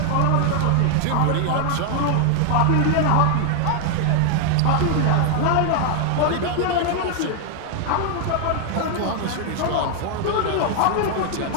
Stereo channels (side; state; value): both; different; correlation 0.00